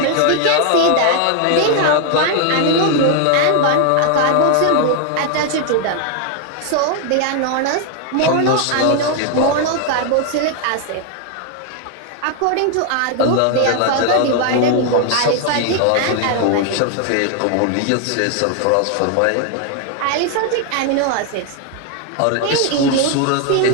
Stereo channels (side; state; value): both; different; correlation 0.00